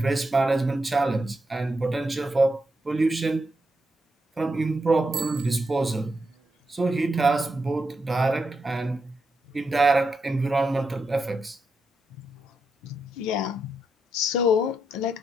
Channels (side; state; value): both; normal; correlation 0.84